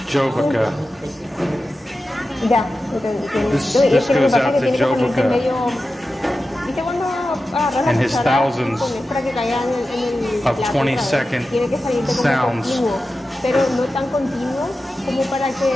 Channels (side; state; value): both; normal; correlation 0.93